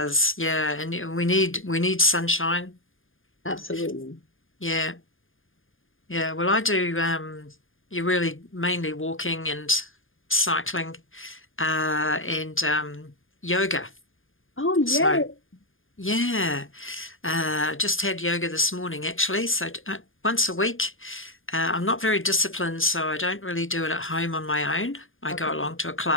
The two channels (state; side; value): late; right; 0.59 ms